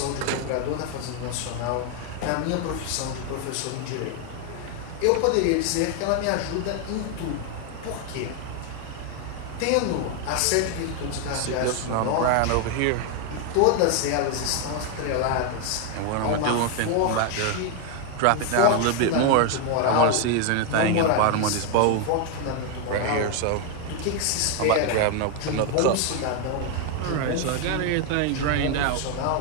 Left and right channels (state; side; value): different; both; correlation 0.01